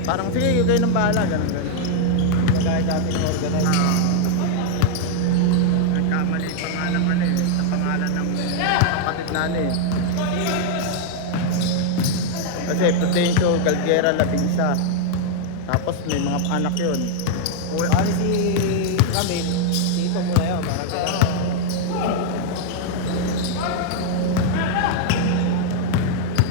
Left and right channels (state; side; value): different; both; correlation 0.00